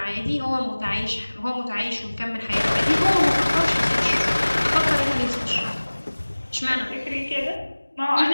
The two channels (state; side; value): inverted; both; correlation -1.00